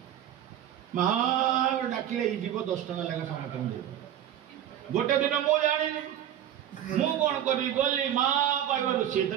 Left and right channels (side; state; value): left; quieter; 10.8 dB